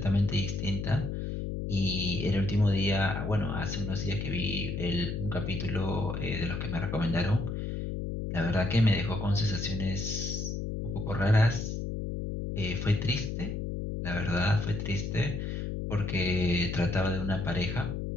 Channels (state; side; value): noise; left; hum, 3 dB below the sound